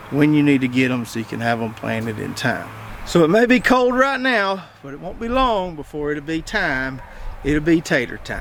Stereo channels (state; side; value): identical; both; correlation 1.00